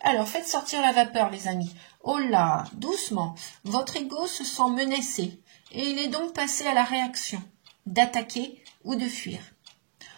Alors, faites sortir la vapeur, les amis. Oh là, doucement. Votre ego se sent menacé. Et il est donc passé à la réaction d'attaquer ou de fuir.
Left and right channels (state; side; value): silent; left; digital silence